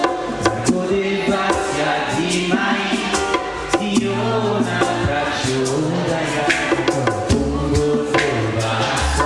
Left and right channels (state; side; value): identical; both; correlation 1.00